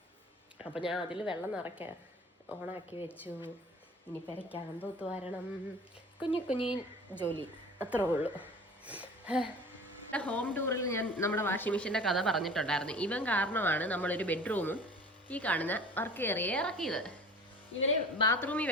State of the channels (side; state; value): both; normal; correlation 0.42